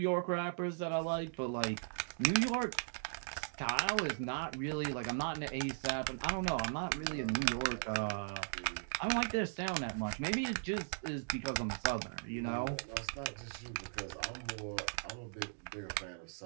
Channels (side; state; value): left; silent; digital silence